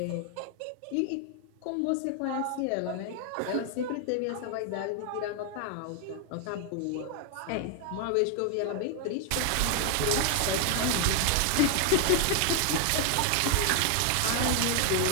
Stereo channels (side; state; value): both; different; correlation 0.00